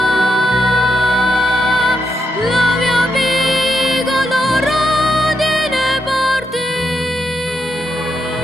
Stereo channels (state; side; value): normal; both; correlation 0.83